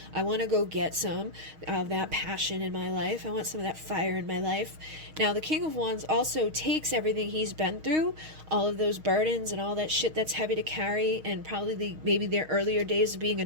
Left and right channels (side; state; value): left; late; 6.4 ms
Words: I want to go get some of that passion in my life. I want some of that fire in my life. Now the King of Wands also takes everything he's been through, all of those burdens and all that shit that's heavy to carry, and probably maybe their earlier days of being a